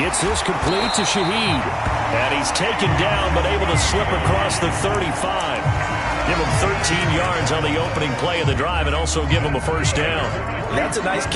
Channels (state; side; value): identical; both; correlation 1.00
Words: this complete to Shaheed. And he's taken down but able to slip across the 35. Give him 13 yards on the opening play of the drive and also give him a first down. That's a nice